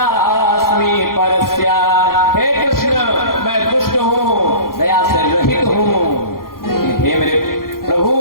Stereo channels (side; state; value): right; late; 0.92 ms